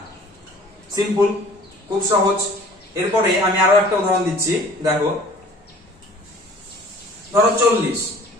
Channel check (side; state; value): both; normal; correlation 0.50